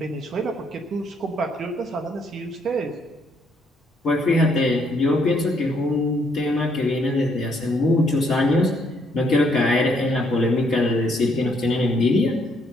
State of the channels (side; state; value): both; normal; correlation 0.71